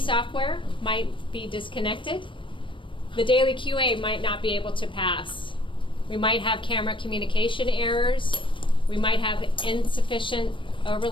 might be disconnected. The daily QA might not be able to pass. We might have camera communication errors. We might have insufficient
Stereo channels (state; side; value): late; right; 0.25 ms